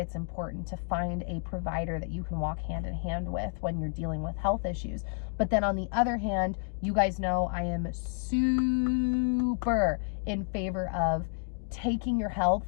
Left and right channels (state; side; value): silent; right; 58 dB below the other